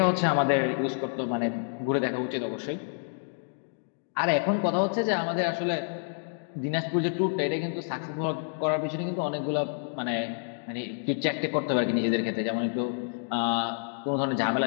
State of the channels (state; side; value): silent; right; digital silence